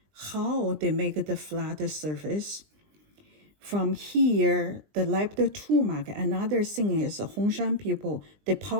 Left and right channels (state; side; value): late; left; 20 ms